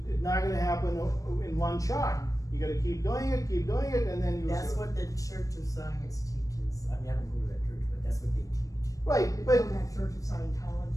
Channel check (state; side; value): late; right; 0.16 ms